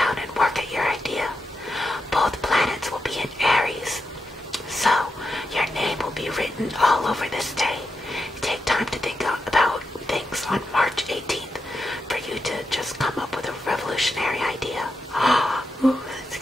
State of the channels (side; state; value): both; normal; correlation 0.86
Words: and work at your idea. Both planets will be in Aries, so your name will be written all over this day. Take time to think about things on March 18th for you to just come up with a revolutionary idea. Ooh, that's